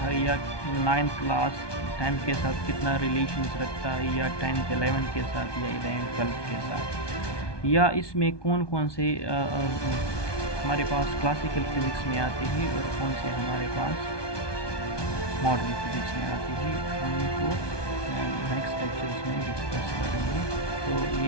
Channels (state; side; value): late; right; 1.2 ms